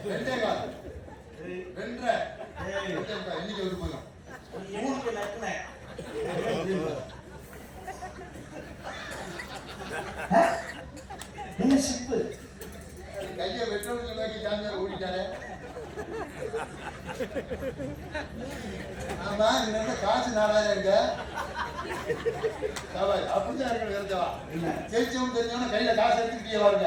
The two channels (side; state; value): both; identical; correlation 1.00